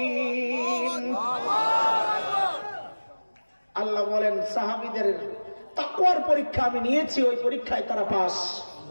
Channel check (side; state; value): both; inverted; correlation -1.00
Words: আল্লাহ বলেন সাহাবীদের তাকওয়ার পরীক্ষা আমি নিয়েছি, ওই পরীক্ষায় তারা পাস।